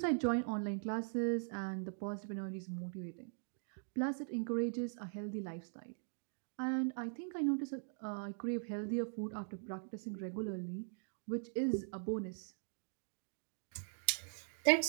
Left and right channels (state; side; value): silent; left; digital silence